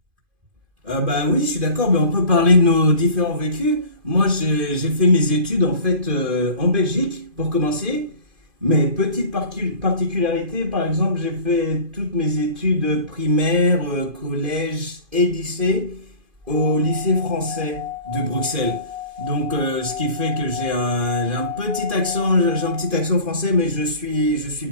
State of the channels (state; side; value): late; left; 2.5 ms